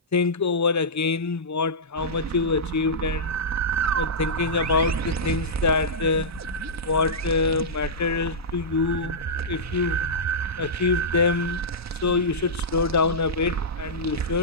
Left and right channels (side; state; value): both; normal; correlation -0.13